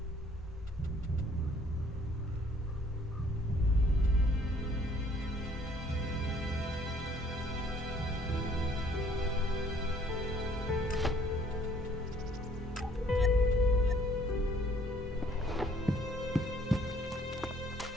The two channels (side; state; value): both; normal; correlation 0.60